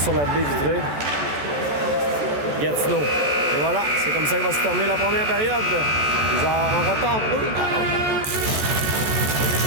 la baie vitrée. Gatineau. Et voilà, c'est comme ça qu'il va se terminer la première période. Ils en retardent 2-1. On est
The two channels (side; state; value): left; late; 14 ms